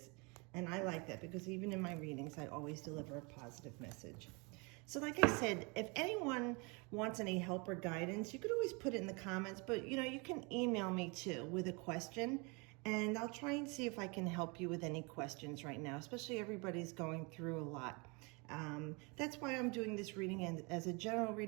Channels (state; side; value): quieter; left; 30.1 dB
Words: and I like that because even in my readings, I always deliver a positive message. So like I said, if anyone wants any help or guidance, you could always put it in the comments, but you can email me too with a question, and I'll try and see if I can help you with any questions right now, especially everybody's going through a lot. That's why I'm doing this reading and as a general